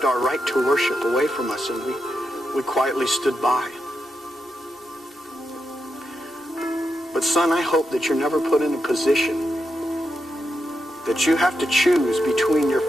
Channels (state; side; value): normal; both; correlation 0.85